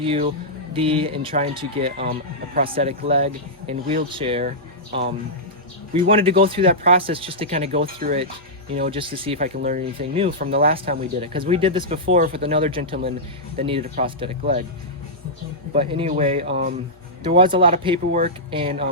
and trying to get a prosthetic leg and wheelchair. We wanted to go through that process just to kind of go through it, just to see if I can learn anything new from the last time we did it. Because we did this before with another gentleman that needed a prosthetic leg. But anyway, there was a lot of paperwork, and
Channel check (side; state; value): both; normal; correlation -0.12